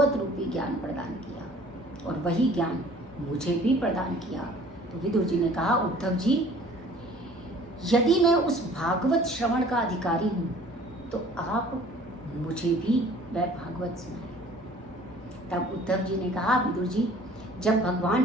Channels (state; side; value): normal; both; correlation 0.51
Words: रूपी ज्ञान प्रदान किया, और वही ज्ञान मुझे भी प्रदान किया। तो विदुर जी ने कहा, उद्धव जी यदि मैं उस भागवत श्रवण का अधिकारी हूँ तो आप मुझे भी वह भागवत सुनाए। तब उद्धव जी ने कहा, विदुर जी जब भगवान